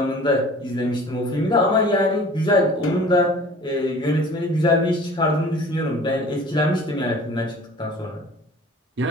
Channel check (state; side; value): normal; both; correlation 0.46